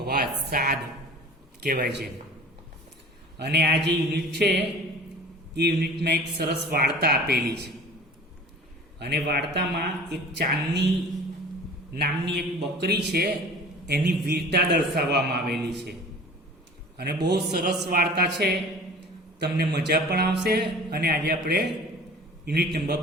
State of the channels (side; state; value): both; normal; correlation 0.42